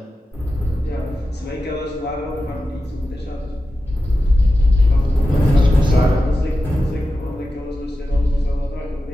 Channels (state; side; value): normal; both; correlation 0.92